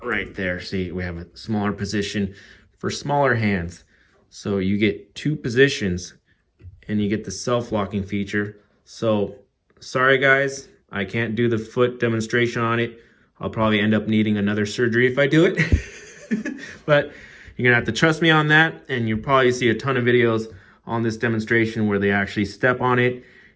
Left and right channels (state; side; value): identical; both; correlation 1.00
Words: Right there, see, we have a smaller position for smaller hands. So you get 2 positions and you get the self-locking feature. So sorry guys, I can't do the foot demonstration on it. I'll probably end up needing another surgery if I do it. But you're gonna have to trust me on that, and you'll probably see a ton of videos on this demonstration where they actually step on it.